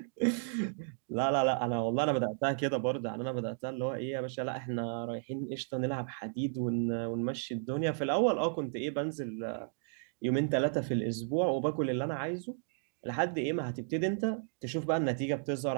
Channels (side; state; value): left; silent; digital silence